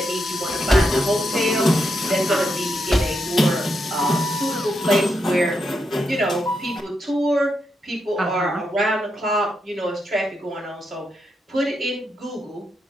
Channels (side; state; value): both; normal; correlation 0.83